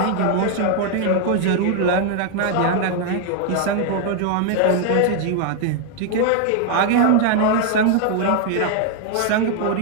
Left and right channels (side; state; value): both; different; correlation 0.00